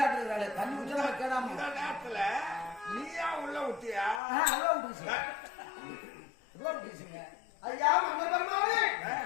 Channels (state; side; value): drops out; right; at 4.2 s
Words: தண்ணி குடிச்சா கேடாம இந்த நேரத்துல நீயா உள்ள விட்டியா அவ்வளோ விட்டுருச்சுங்க ஐயா மன்னர் பெருமானே